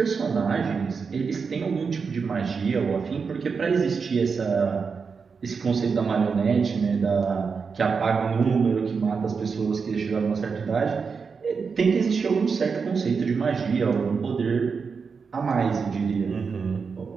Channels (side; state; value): left; quieter; 5.4 dB